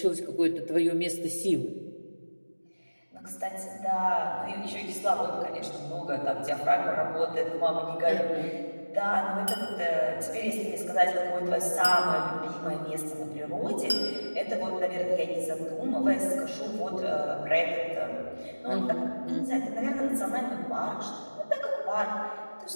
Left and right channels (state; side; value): inverted; both; correlation -1.00